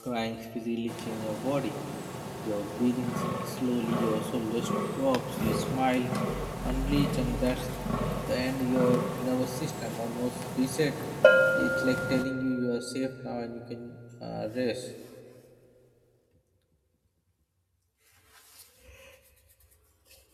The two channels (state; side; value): identical; both; correlation 1.00